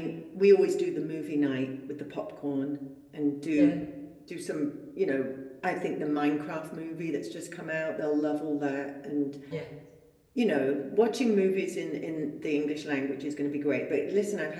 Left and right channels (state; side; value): identical; both; correlation 1.00